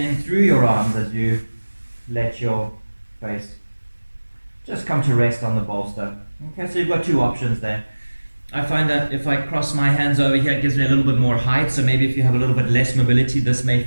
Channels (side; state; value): both; inverted; correlation -1.00